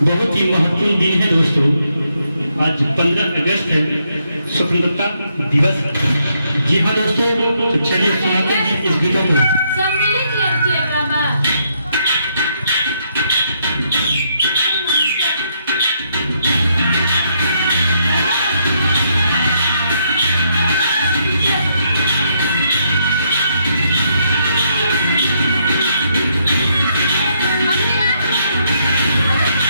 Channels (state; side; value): inverted; both; correlation -0.75